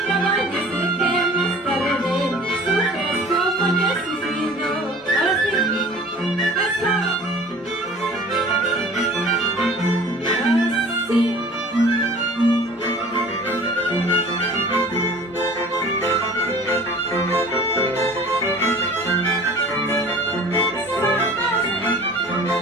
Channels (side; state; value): both; normal; correlation 0.45